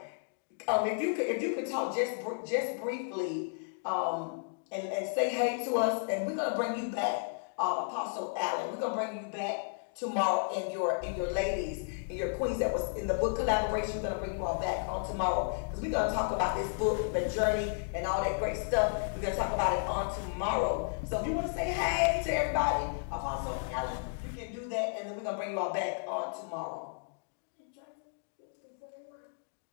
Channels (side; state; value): right; silent; digital silence